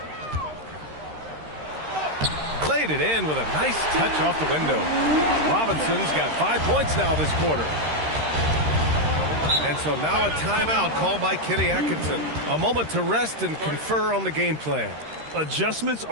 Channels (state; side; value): late; left; 13 ms